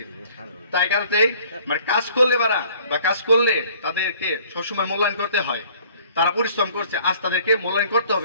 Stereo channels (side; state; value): both; inverted; correlation -0.55